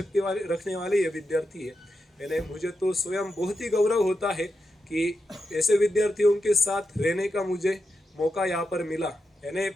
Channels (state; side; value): normal; both; correlation 0.87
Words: वाले रखने वाले ये विद्यार्थी है। यानी मुझे तो स्वयं बहुत ही गौरव होता है कि ऐसे विद्यार्थियों के साथ रहने का मुझे मौका यहाँ पर मिला। यानी